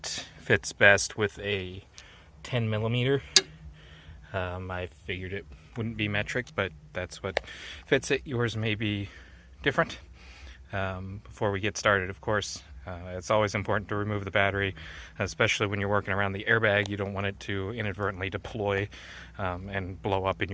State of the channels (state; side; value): identical; both; correlation 1.00